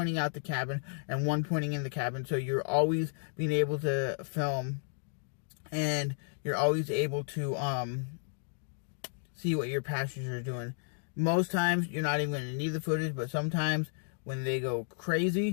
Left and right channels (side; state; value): right; silent; digital silence